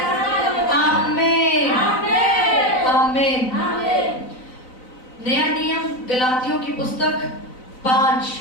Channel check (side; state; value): right; late; 3.9 ms